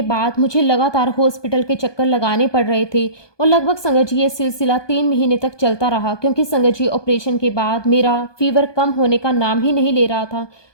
बाद मुझे लगातार हॉस्पिटल के चक्कर लगाने पड़ रहे थे और लगभग संगत जी ये सिलसिला 3 महीने तक चलता रहा, क्योंकि संगत जी ऑपरेशन के बाद मेरा फीवर कम होने का नाम ही नहीं ले रहा था।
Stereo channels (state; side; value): late; right; 1.2 ms